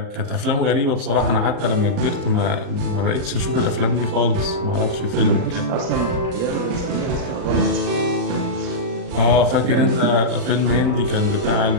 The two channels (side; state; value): left; late; 40 ms